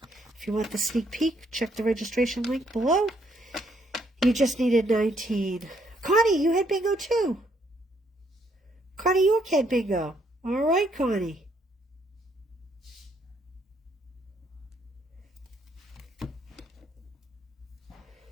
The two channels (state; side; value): normal; both; correlation 0.70